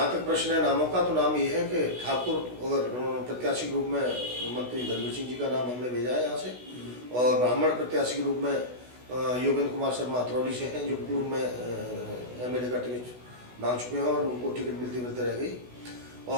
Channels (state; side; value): late; left; 16 ms